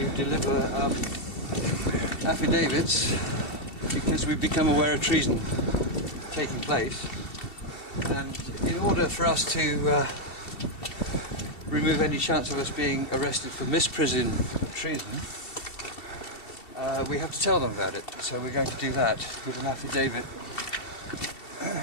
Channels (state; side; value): late; right; 2.7 ms